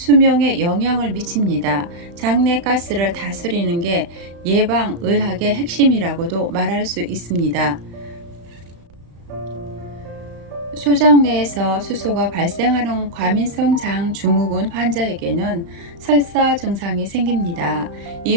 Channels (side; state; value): left; late; 35 ms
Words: 영향을 미칩니다. 장내 가스를 다스리는 게 예방의학의 핵심이라고도 말할 수 있습니다. 소장 내에서 수소가 발생하는 과민성 장 증후군 환자에게는 설사 증상이 생깁니다. 이